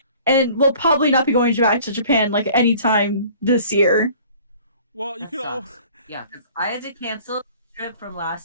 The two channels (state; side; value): inverted; both; correlation -0.50